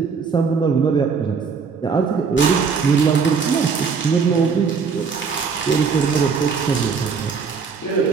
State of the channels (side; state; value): left; quieter; 5.6 dB